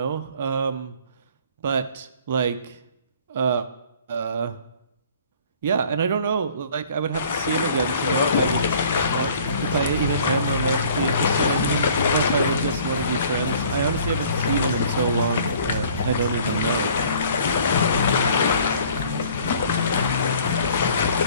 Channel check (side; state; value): both; inverted; correlation -0.53